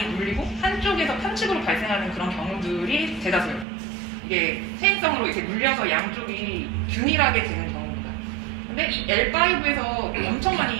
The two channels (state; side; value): drops out; left; at 3.7 s